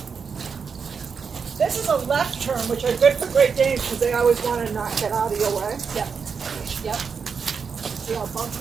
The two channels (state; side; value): quieter; left; 5.8 dB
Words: This is a left turn, which are good for Great Danes because they always want to not get out of your way. Yep. Yep. See how bumps